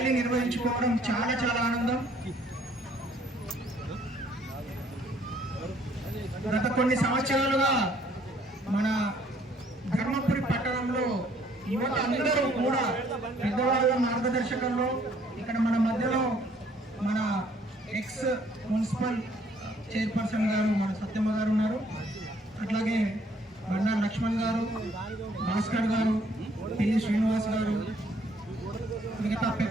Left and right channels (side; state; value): both; normal; correlation 0.63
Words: నిర్వహించుకోవడం చాలా ఆనందం. గత కొన్ని సంవత్సరాలుగా మన ధర్మపురి పట్టణంలో యువత అందరూ కూడా పెద్దవాళ్ళ మార్గదర్శకంలో ఇక్కడ మన మధ్యలో మన ఎక్స్ మున్సిపల్ చైర్పర్సన్ గారు మన సత్యమ్మ గారు ఉన్నారు. అట్లాగే బండా లక్ష్మణ్ గారు, భాస్కర్ గారు, పిల్లి శ్రీనివాస్ గారు, మిగతా